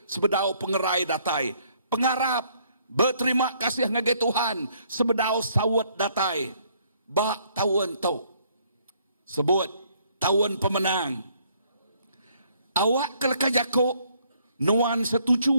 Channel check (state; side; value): inverted; both; correlation -0.66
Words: sebedau pengerai datai. Pengarap berterima kasih ngagai Tuhan sebedau sawat datai. Bak tahun tu. Sebut tahun pemenang. Awak keleka jakuk nuan